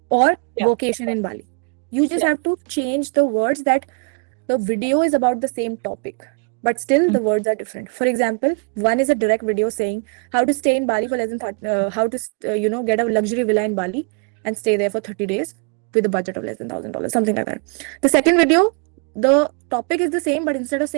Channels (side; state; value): left; quieter; 36.9 dB